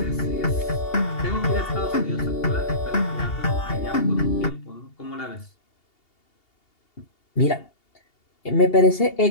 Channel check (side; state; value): right; late; 2.8 ms